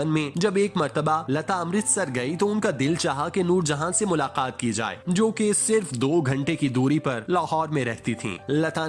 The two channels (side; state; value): both; identical; correlation 1.00